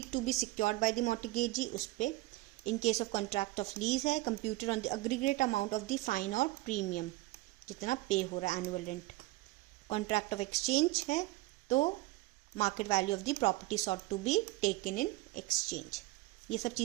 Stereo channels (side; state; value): left; quieter; 20.2 dB